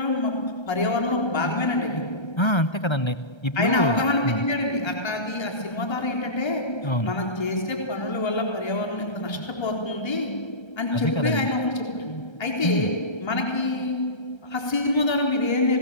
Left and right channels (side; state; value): right; late; 1.3 ms